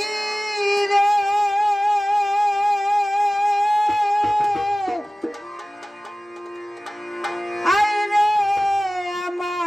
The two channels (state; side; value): normal; both; correlation 0.97